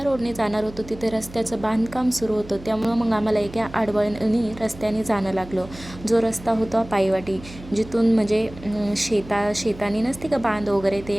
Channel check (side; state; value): right; noise; hum, 17 dB below the sound